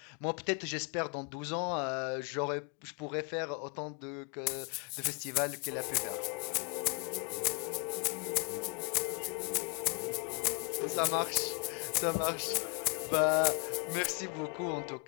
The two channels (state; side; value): quieter; right; 31.4 dB